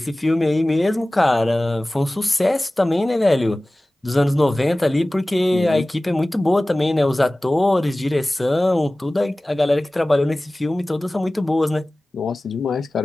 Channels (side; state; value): both; normal; correlation 0.98